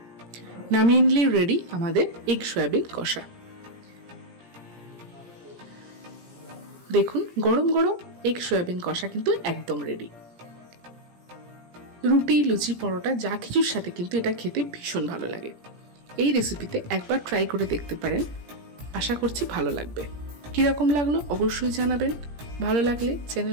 নামিয়ে নিলেই রেডি আমাদের এগ সয়াবিন কষা। দেখুন গরম গরম এগ সয়াবিন কষা কিন্তু একদম রেডি। রুটি লুচি পরোটা যা কিছুর সাথে কিন্তু এটা খেতে ভীষণ ভালো লাগে। এই রেসিপিতে একবার ট্রাই করে দেখতে পারেন, আশা করছি ভালো লাগবে। কিরকম লাগলো অবশ্যই জানাবেন। ভালো লাগলে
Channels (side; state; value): left; late; 17 ms